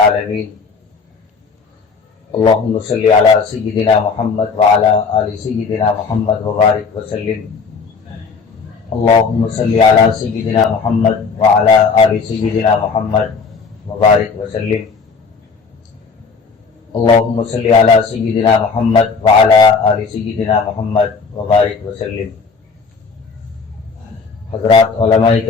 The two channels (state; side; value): quieter; right; 4.9 dB